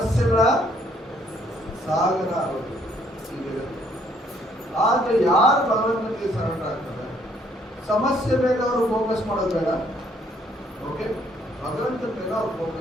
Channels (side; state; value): both; normal; correlation 0.66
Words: ಸಾಗರ ಆರೋಗ್ಯ. ಆದ್ರೆ ಯಾರು ಭಗವಂತನಿಗೆ ಸರೆಂಡರ್ ಆಗ್ತಾರೆ, ಸಮಸ್ಯೆ ಮೇಲೆ ಅವರು ಫೋಕಸ್ ಮಾಡೋದು ಬೇಡ. ಓಕೆ, ಭಗವಂತನ ಮೇಲೆ ಅವ್ರು